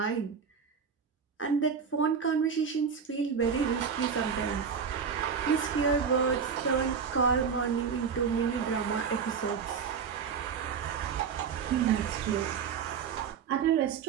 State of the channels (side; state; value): left; quieter; 6.4 dB